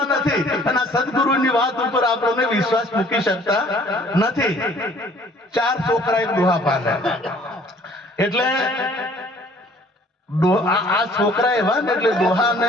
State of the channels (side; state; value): both; normal; correlation 0.55